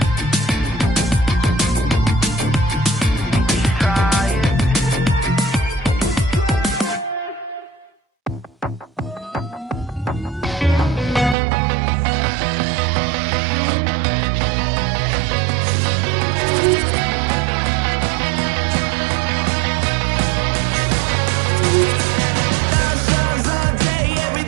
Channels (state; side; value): drops out; left; at 11.4 s